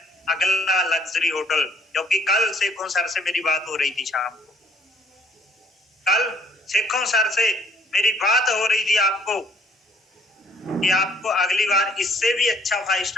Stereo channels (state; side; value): normal; both; correlation 0.60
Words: अगला लग्जरी होटल। क्योंकि कल शेखों सर से मेरी बात हो रही थी शाम को, मेरी बात हो रही थी आपको कि आपको अगली बार इससे भी अच्छा 5